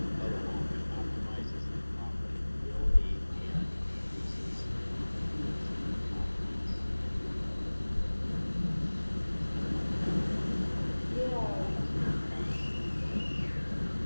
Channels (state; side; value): inverted; both; correlation -1.00